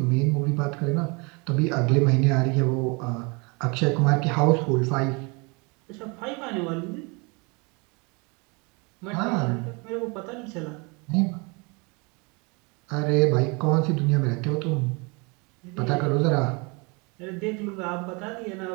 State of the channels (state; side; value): quieter; left; 29.7 dB